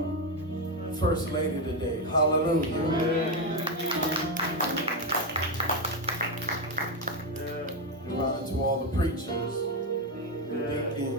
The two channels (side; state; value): both; normal; correlation 0.09